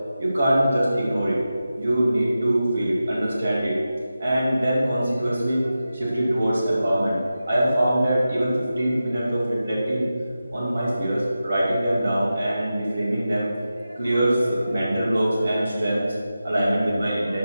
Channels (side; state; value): both; inverted; correlation -0.92